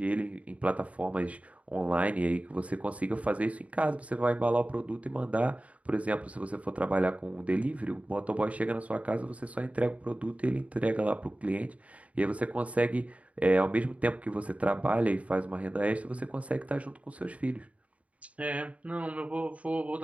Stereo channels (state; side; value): late; left; 0.066 ms